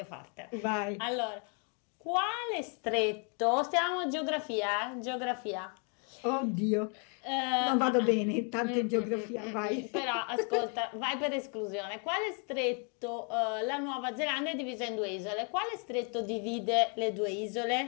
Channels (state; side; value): quieter; right; 38.9 dB